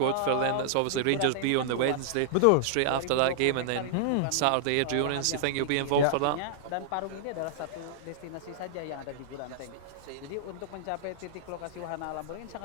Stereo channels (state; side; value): different; both; correlation -0.01